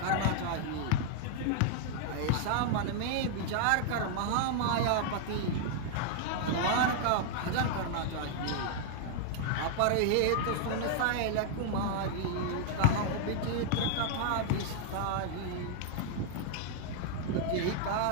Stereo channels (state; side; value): different; both; correlation -0.01